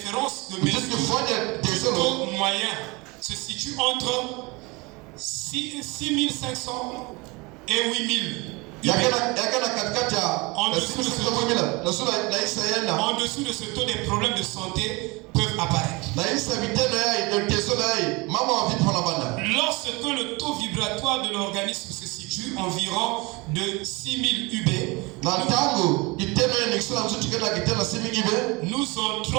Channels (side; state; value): left; quieter; 25.6 dB